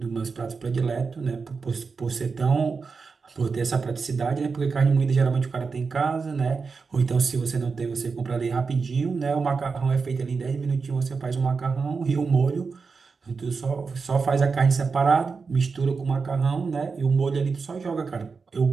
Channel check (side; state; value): left; quieter; 4.9 dB